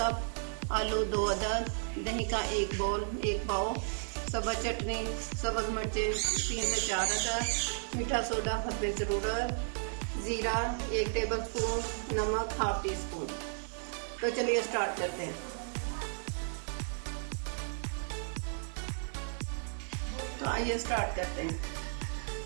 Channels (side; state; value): left; silent; 55 dB below the other